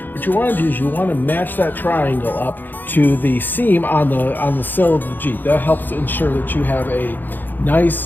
What you want to do is you want to match that triangle up to the seam on the sill of the Jeep. That helps ensure that you have a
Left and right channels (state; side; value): late; right; 0.089 ms